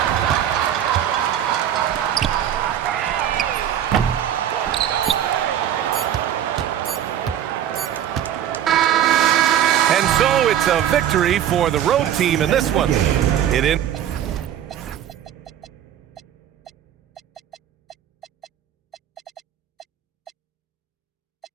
And so it's a victory for the road team in this one. It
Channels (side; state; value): left; quieter; 10.5 dB